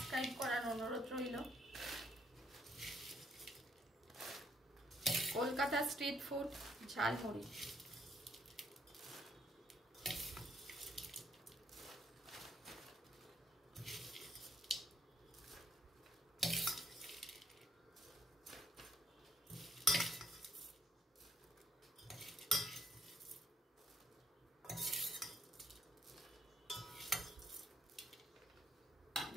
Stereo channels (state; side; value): normal; both; correlation 0.69